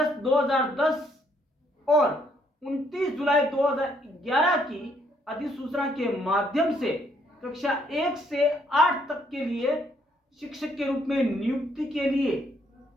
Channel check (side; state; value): both; normal; correlation 0.70